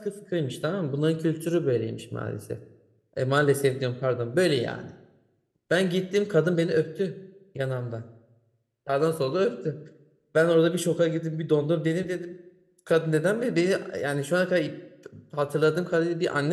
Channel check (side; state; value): both; identical; correlation 1.00